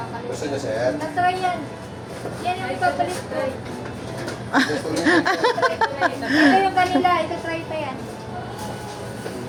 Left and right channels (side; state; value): both; identical; correlation 1.00